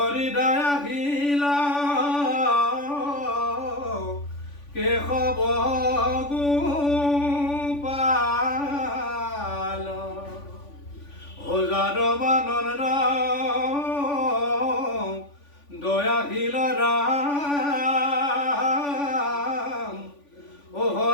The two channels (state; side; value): late; right; 3.5 ms